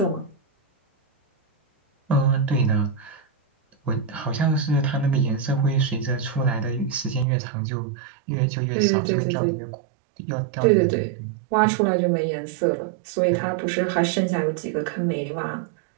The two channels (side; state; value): left; drops out; at 7.2 s